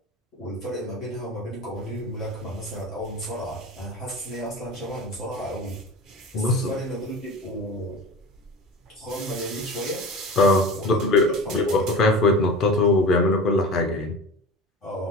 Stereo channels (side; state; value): both; normal; correlation 0.33